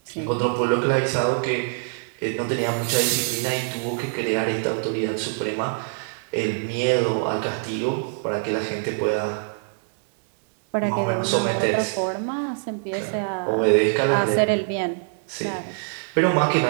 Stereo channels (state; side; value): silent; left; digital silence